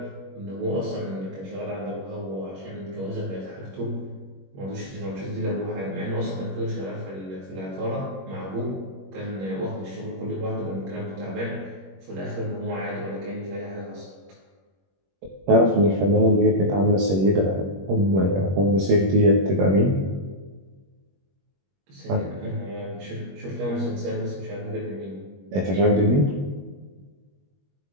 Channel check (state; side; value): late; left; 21 ms